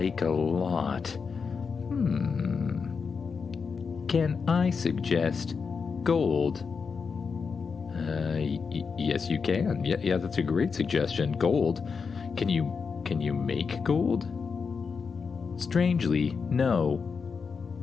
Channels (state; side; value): quieter; right; 5.5 dB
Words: a lot. Can I suggest gold? Yes, you can. Yeah, that's a great suggestion. Gold. Can you make gold? Strangely, no.